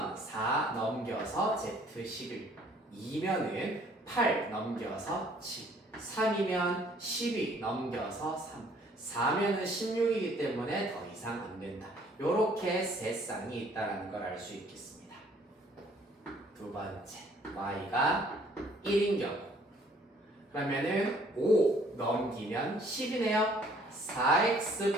4 넘겨서 z 11, 2면은 8 넘겨서 7, 3이면 12 넘겨서 3, 4면은 16이기 때문에 더 이상 안 된다. 요렇게 세 쌍이 있다는 걸 알 수 있겠습니다. 두 번째, y가 1인 경우 그러면은 5 넘기면 10이네요.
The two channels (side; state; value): both; normal; correlation 0.59